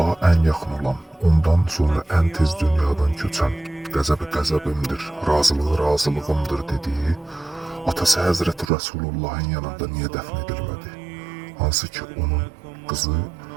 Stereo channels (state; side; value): drops out; left; at 8.7 s